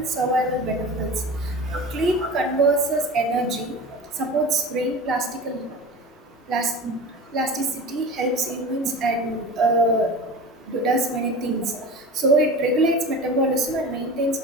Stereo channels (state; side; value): normal; both; correlation 0.33